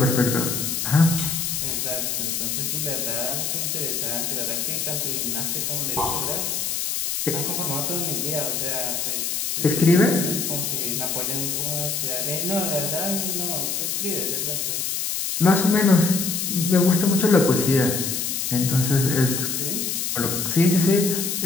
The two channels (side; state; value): left; noise; hiss, 1 dB below the sound